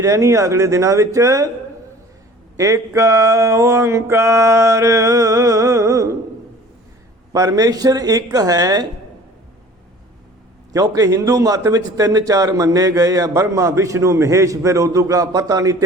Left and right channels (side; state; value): both; normal; correlation 0.47